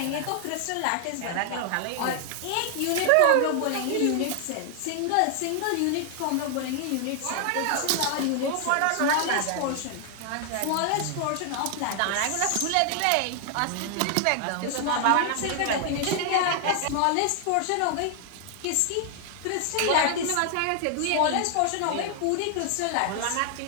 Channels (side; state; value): both; different; correlation 0.00